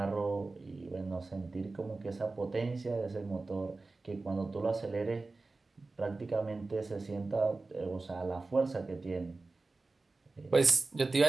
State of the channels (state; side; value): quieter; left; 3.6 dB